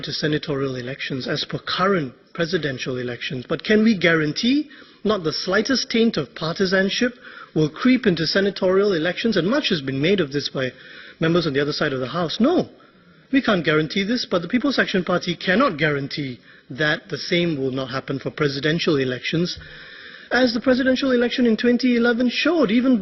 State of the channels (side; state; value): both; identical; correlation 1.00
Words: to senatorial elections as per current presidential elections, but can we guarantee not the slightest taint of partisanship will creep into senatorial elections? And much has been made of this by members on the other side of the House. No, we can't guarantee this, but the People's Action Party cannot guarantee that the same will not happen for presidential elections, as the presidential election in 2011 showed, even